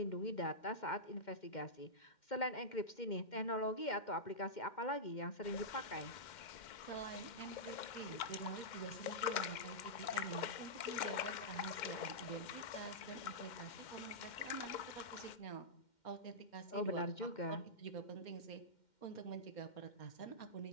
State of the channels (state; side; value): late; right; 2.1 ms